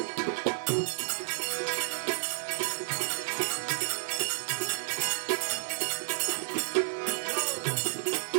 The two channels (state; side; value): silent; left; 57 dB below the other